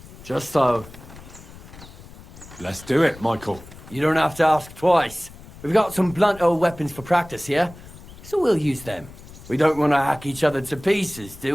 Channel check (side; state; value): left; noise; rumble, 18 dB below the sound